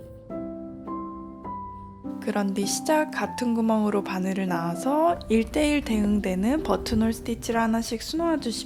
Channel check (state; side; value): identical; both; correlation 1.00